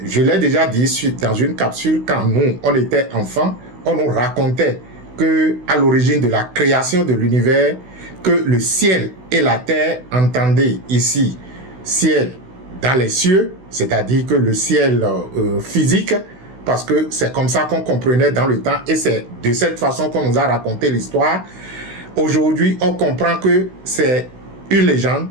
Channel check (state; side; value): late; left; 16 ms